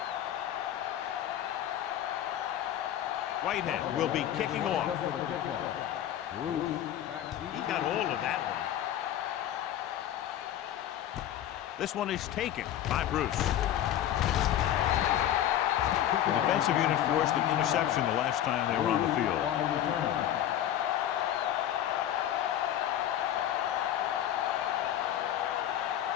Whitehead will be kicking off. Up for the kickoff. Bruce back deep. He got all of that one. This one is taken by Bruce. The defensive unit forced an interception the last time they were on the field. On the return.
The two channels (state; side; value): quieter; right; 11.4 dB